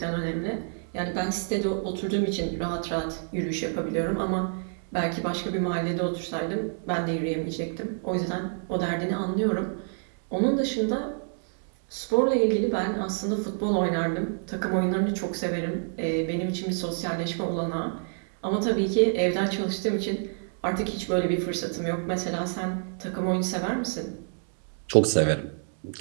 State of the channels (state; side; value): silent; left; digital silence